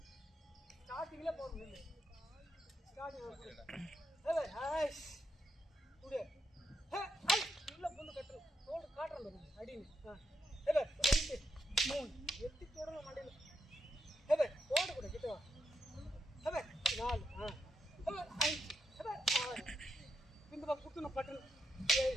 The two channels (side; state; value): both; normal; correlation 0.81